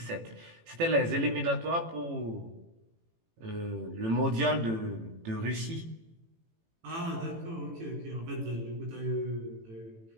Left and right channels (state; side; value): late; left; 18 ms